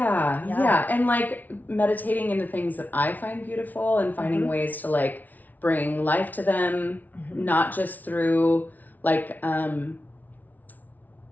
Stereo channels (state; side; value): late; right; 0.079 ms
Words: And like meditating into things that I find beautiful and finding ways to like bring life to them, not just through like I